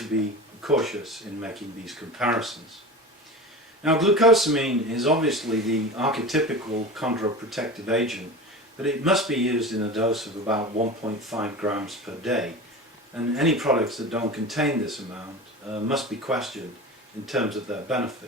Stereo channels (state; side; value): normal; both; correlation 0.30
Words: be cautious in making these comparisons. Now, glucosamine is obviously the archetypical chondroprotective agent, but it must be used in a dose of about 1.5 grams per day, and any products that don't contain this amount must be questioned in terms of their